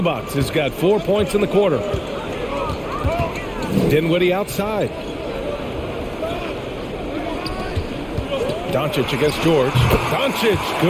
has got 4 points in the quarter. Dinwiddie outside. Doncic against George. Doncic,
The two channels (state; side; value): identical; both; correlation 1.00